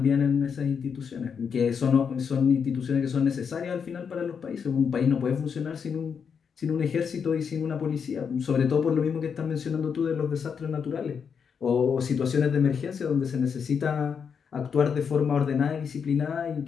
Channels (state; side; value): quieter; right; 6.6 dB